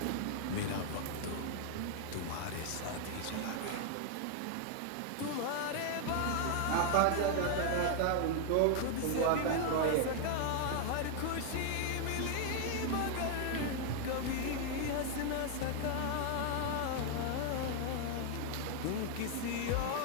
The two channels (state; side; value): different; both; correlation 0.00